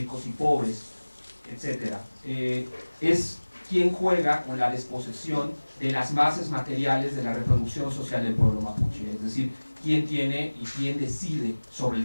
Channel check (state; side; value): inverted; both; correlation -1.00